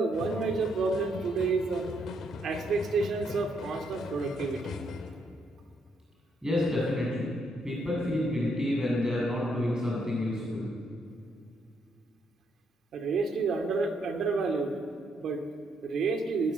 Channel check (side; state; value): both; normal; correlation 0.74